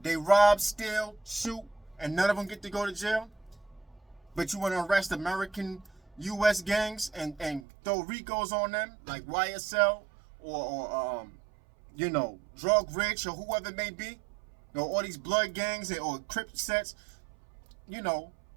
They rob, steal, shoot, and none of them get to go to jail. But you want to arrest American U.S. gangs and throw RICOs on them, like YSL or Drug Rich or whoever it may be. All these blood gangs or Crip sets,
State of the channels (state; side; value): drops out; left; at 7.7 s